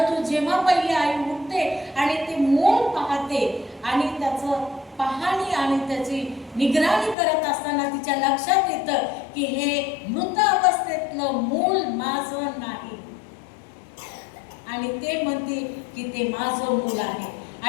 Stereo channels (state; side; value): drops out; right; at 7.2 s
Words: जेव्हा पहिली आई उठते आणि ते मूल पाहते आणि त्याचं पाहणी आणि त्याची निगराणी करत असताना तिच्या लक्षात येतं की हे मृत अवस्थेतलं मूल माझं नाही. आणि ते म्हणते की ते माझं मूल आहे.